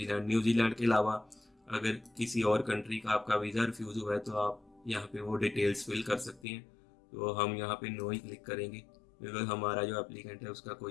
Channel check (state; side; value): drops out; right; at 6.5 s